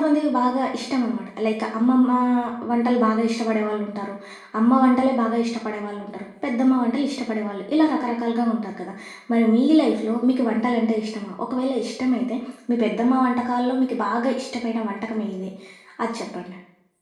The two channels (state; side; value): identical; both; correlation 1.00